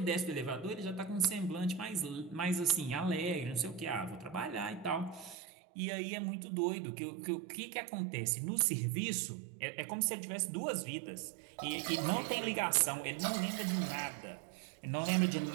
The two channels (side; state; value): left; drops out; at 5.4 s